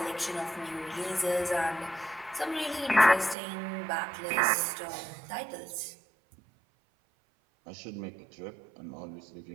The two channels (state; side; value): drops out; left; at 3.4 s